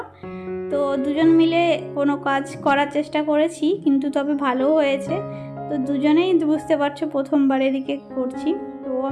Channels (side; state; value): both; identical; correlation 1.00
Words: তো দুজন মিলে কোনো কাজ করার চেষ্টা করেছি, কিন্তু তবে ভালোও হয়েছে। তো দুজনেই বুঝতে পারছো প্রথমবার এদিকে করছি, তো ও